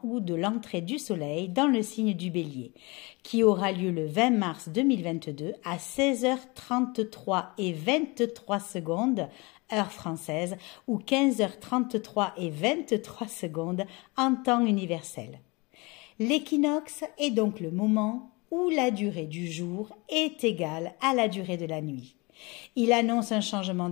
ou de l'entrée du soleil dans le signe du Bélier, qui aura lieu le 20 mars 2022 à 16h33 et 23 secondes, heure française, ou 15h33 et 23 secondes en temps universel. L'équinoxe est donc le moment où la durée du jour est égale à la durée de la nuit. Il annonce un changement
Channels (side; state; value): right; quieter; 26.4 dB